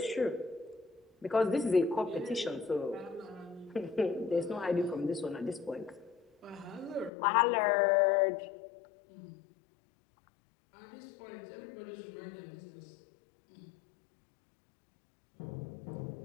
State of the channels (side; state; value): right; drops out; at 7.1 s